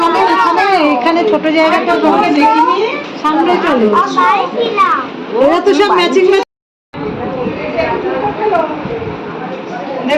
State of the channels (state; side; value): identical; both; correlation 1.00